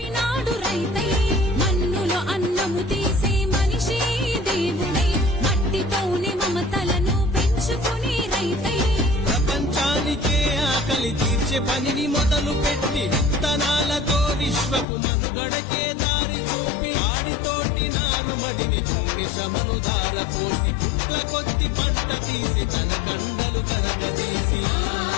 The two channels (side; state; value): right; drops out; at 14.9 s